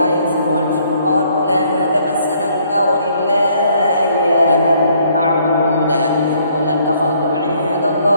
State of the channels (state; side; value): inverted; both; correlation -0.65